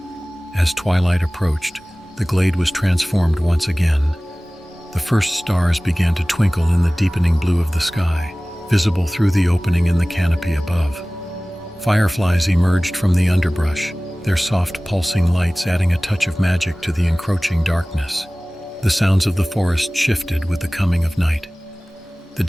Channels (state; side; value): normal; both; correlation 0.98